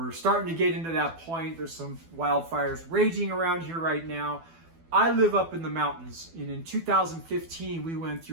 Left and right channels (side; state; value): left; late; 12 ms